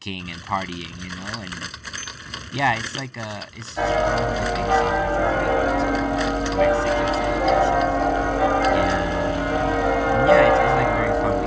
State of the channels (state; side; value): identical; both; correlation 1.00